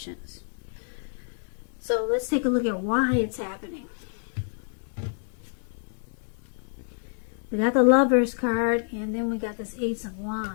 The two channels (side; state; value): right; silent; 59 dB below the other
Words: So let's take a look at why it's happening. We got the Lovers card, and then we got this Ace of